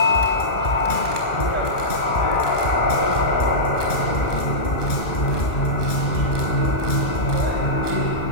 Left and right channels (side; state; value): right; late; 1.8 ms